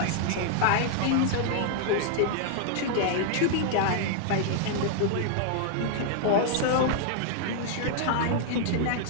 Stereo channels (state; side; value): different; both; correlation -0.01